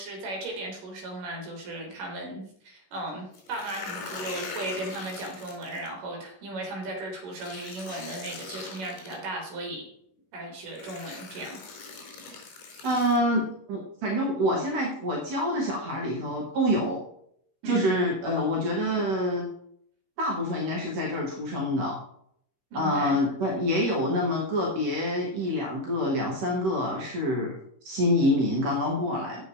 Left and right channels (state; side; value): late; left; 11 ms